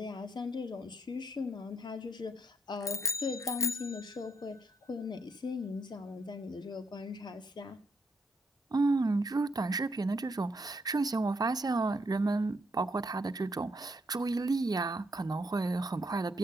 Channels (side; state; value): both; normal; correlation 0.75